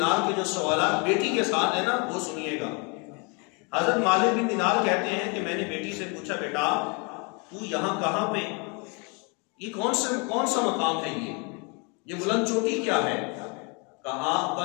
کے جو سوالات بیٹی کے ساتھ ہیں نا وہ سنیے گا۔ حضرت مالک بن دینار کہتے ہیں کہ میں نے بیٹی سے پوچھا بیٹا تو یہاں کہاں پہ، یہ کون سا مقام ہے، یہ بلند چوٹی کیا ہے؟ کہا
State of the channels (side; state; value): right; quieter; 32.8 dB